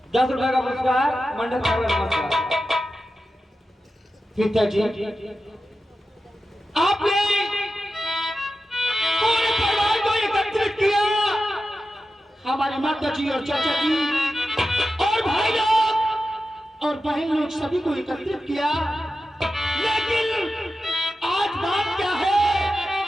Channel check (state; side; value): normal; both; correlation 0.92